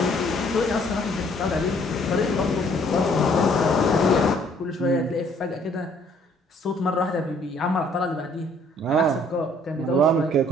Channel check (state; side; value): normal; both; correlation 0.61